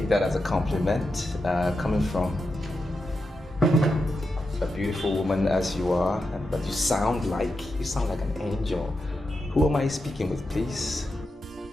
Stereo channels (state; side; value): normal; both; correlation 0.88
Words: that as a compliment, coming from a beautiful woman as you are, but you sound like an angel. Who am I speaking with, please?